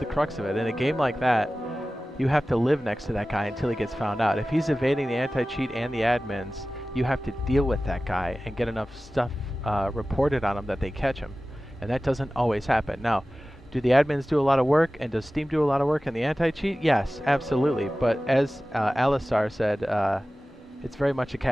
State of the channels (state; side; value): normal; both; correlation 0.96